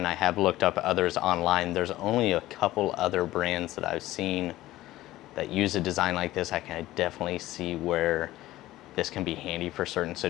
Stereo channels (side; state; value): right; quieter; 16.1 dB